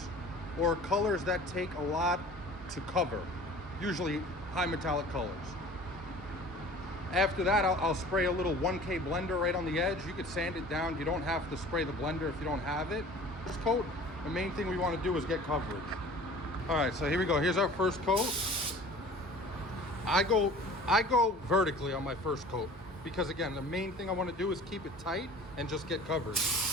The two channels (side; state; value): both; normal; correlation 0.44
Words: or colors that take a lot to cover, usually high metallic colors. After that, I'll spray a little 1K blender right on the edge. You could sand it down. You don't have to spray the blender if you don't have it. First coat, the main thing we want to do is get coverage. All right, so here we go. Here's our first coat. I go vertically on my first coat because, again, the main thing I want to do is keep it tight and just get coverage.